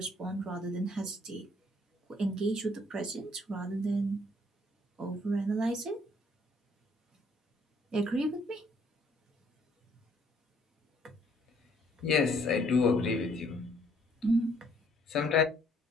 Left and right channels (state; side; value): normal; both; correlation 0.64